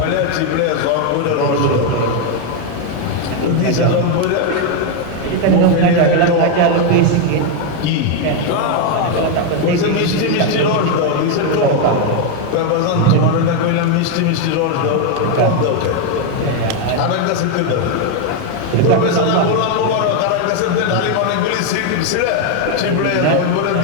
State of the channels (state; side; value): different; both; correlation 0.01